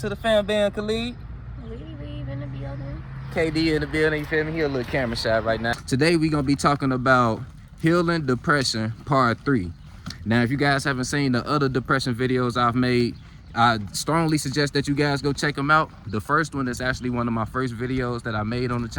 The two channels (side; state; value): both; identical; correlation 1.00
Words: the fan band, Khalid. Leave in the building. KD in the building, you feel me? He a little camera shy right now. Today we gonna be talking about healing depression part 3. Now, if you guys haven't seen the other depression videos I've made, I strongly suggest that you guys go check them out. The first one is actually one of my first videos that I made on the